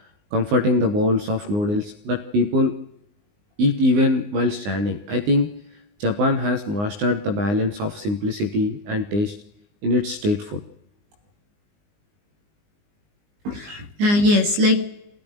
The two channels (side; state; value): left; late; 19 ms